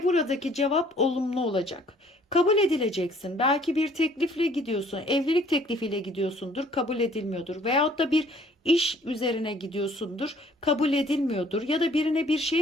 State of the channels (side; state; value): both; normal; correlation 0.58